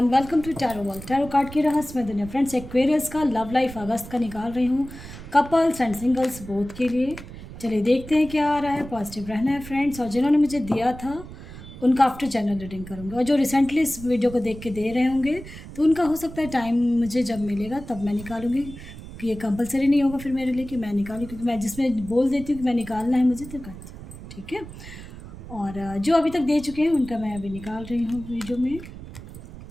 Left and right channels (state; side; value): noise; right; rumble, 14 dB below the sound